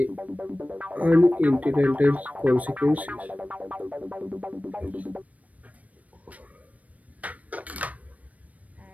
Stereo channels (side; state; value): left; late; 0.070 ms